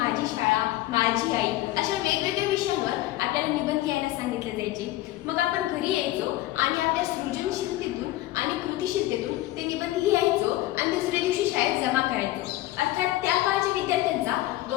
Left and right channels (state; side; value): quieter; right; 16.5 dB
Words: शाळा, माझी आई अशा वेगवेगळ्या विषयांवर आपल्याला निबंध लिहायला सांगितले जायचे. मग आपण घरी यायचो आणि आपल्या सृजनशीलतेतून आणि कृतिशीलतेतून ते निबंध लिहायचो आणि दुसऱ्या दिवशी शाळेत जमा करायचो. अर्थात त्या काळच्या विद्यार्थ्यांचा